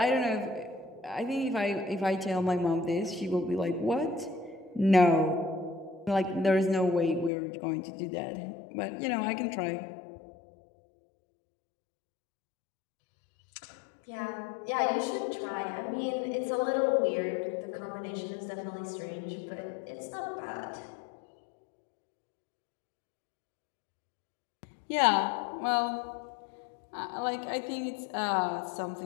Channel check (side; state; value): right; drops out; at 7.3 s